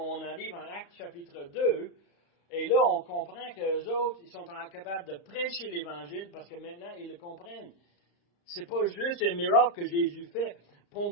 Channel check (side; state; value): right; late; 35 ms